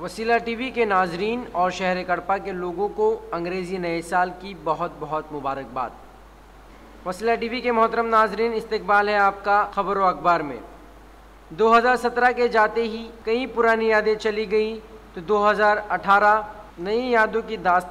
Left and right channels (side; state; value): both; identical; correlation 1.00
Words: वसीला टीवी के नाजरीन और शहर कड़पा के लोगों को अंग्रेज़ी नए साल की बहुत बहुत मुबारकबाद। वसीला टीवी के मोहतरम नाजरीन, इस्तकबाल है आपका खबर व अखबार में। 2017 के जाते ही कई पुरानी यादें चली गई तो 2018 नई यादों की